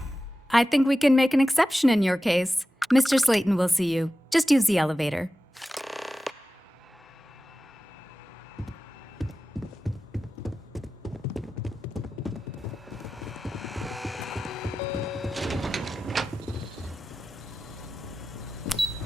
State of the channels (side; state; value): both; normal; correlation 0.94